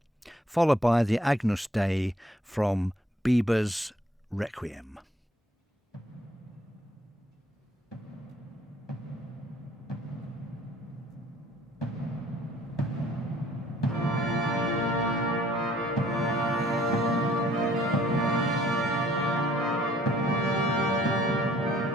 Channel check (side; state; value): both; normal; correlation 0.60